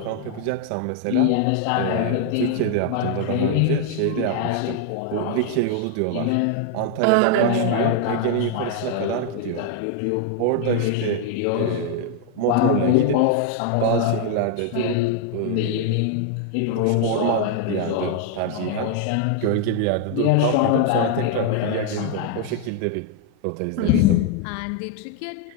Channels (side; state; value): both; different; correlation 0.00